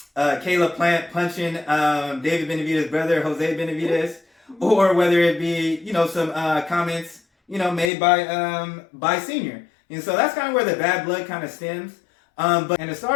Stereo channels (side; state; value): right; drops out; at 7.9 s